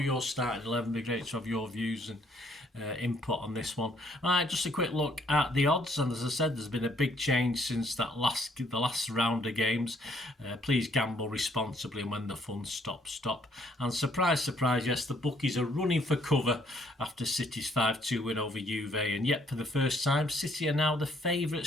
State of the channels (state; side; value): normal; both; correlation 0.66